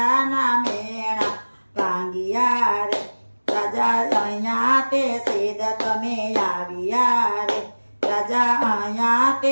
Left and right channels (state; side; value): inverted; both; correlation -1.00